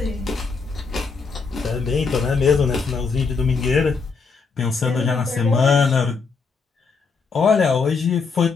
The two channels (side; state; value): right; quieter; 4.8 dB